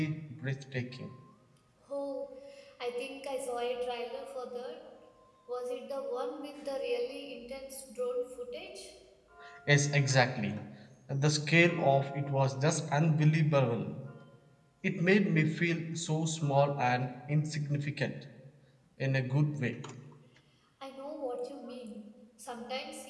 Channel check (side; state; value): both; identical; correlation 1.00